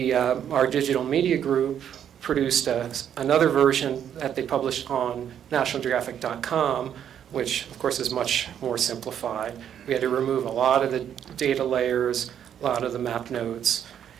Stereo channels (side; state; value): left; quieter; 9.3 dB